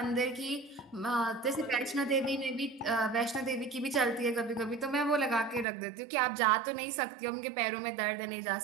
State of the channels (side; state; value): left; drops out; at 5.7 s